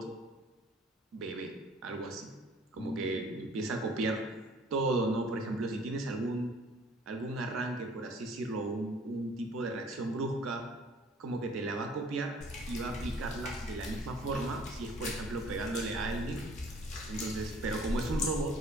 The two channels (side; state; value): both; normal; correlation 0.54